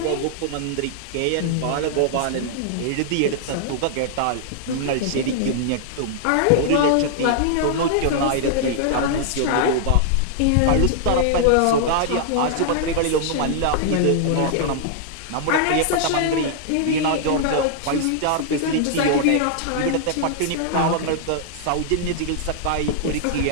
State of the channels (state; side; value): different; both; correlation -0.01